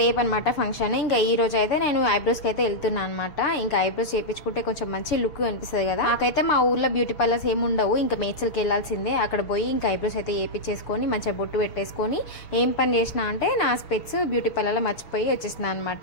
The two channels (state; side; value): late; right; 6.8 ms